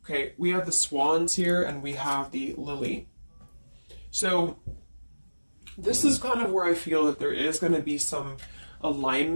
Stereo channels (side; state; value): both; inverted; correlation -1.00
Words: Okay, we have the swans here and we have the lily. So this is kind of where I feel that there is going to be some